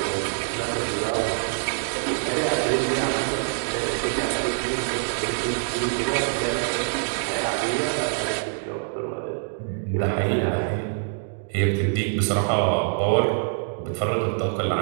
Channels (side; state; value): left; silent; digital silence